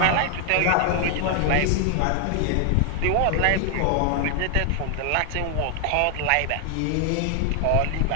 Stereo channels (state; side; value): different; both; correlation 0.00